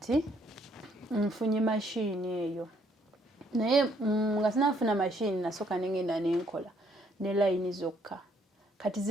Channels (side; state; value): both; normal; correlation 0.68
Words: nfunye machine eyo. Naye nga sinafuna machine nasoka nengenda nenkola ne line zokka. Kati